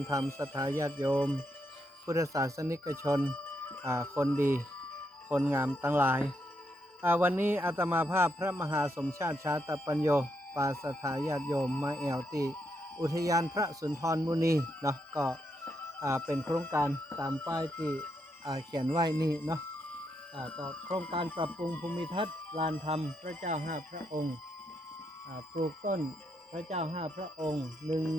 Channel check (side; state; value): both; normal; correlation 0.79